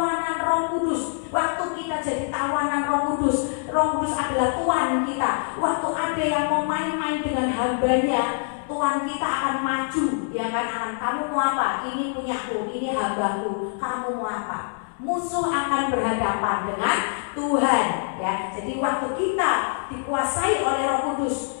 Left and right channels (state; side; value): silent; right; digital silence